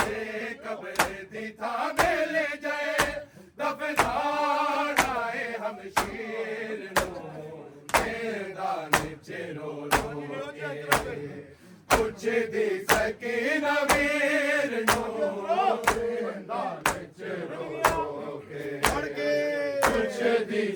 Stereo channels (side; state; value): both; identical; correlation 1.00